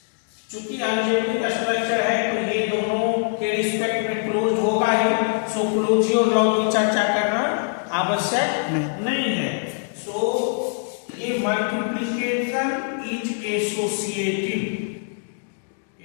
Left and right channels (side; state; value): right; silent; digital silence